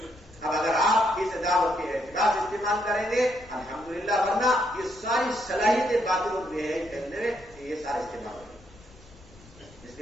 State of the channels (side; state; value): left; noise; rumble, 24 dB below the sound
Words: اب اگر آپ اس دعوت کے اعتراض استعمال کریں گے الحمدللہ, ورنہ یہ ساری صلاحیتیں باطل اور بے حیائی پھیلنے میں یہ سارے استعمال ہوں گے. اس